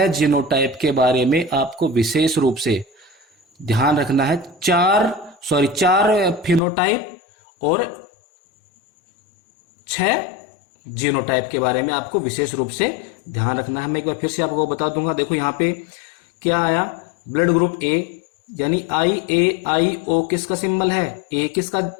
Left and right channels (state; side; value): drops out; right; at 6.6 s